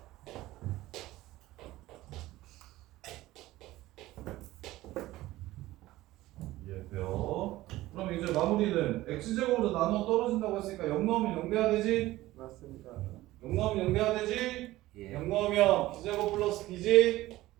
이해돼요? 그럼 이제 마무리는 x제곱으로 나눠 떨어진다고 했으니까 0 넣으면 0 돼야 되지? 맞습니다. 0 넣으면 0 돼야 되지? 예. 0 넣으면 b제곱 플러스 b지?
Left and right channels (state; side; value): quieter; left; 17.0 dB